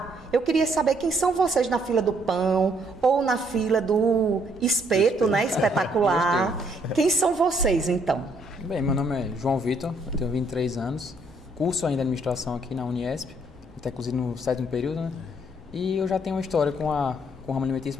eu queria saber quem são vocês na fila do pão ou na fila do espeto, né? Espetacular. Quem são vocês, então? Bem, meu nome é João Vitor, eu tenho 23 anos, curso ainda administração aqui na Uniesp, até inclusive no 7º período, né? E eu já tenho uma história com o ramo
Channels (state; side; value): normal; both; correlation 0.68